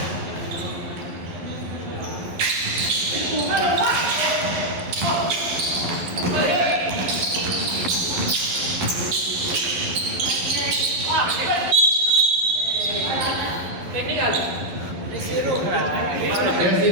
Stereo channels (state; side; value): late; left; 11 ms